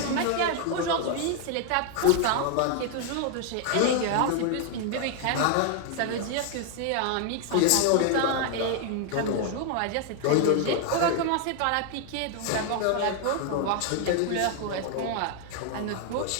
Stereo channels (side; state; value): both; different; correlation 0.00